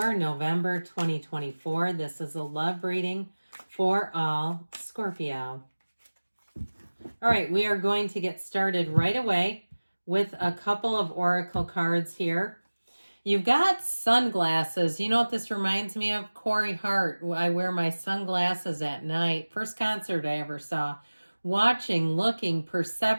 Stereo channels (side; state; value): both; inverted; correlation -1.00